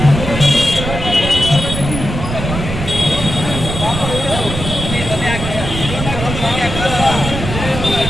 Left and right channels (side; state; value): right; noise; rumble, 5 dB below the sound